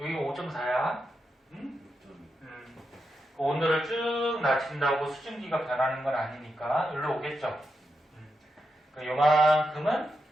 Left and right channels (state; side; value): normal; both; correlation 0.86